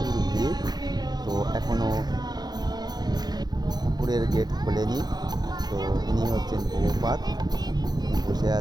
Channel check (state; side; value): late; left; 0.20 ms